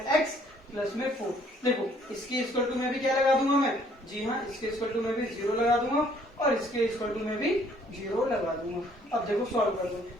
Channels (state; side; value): normal; both; correlation 0.61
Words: प्लस में 4। देखो इसके इक्वल टू में भी क्या लगा दूंगा मैं, जी हाँ इसके इक्वल टू में भी 0 लगा दूंगा और इसके इक्वल टू में भी 0 लगा दूंगा। अब देखो सॉल्व कर दो,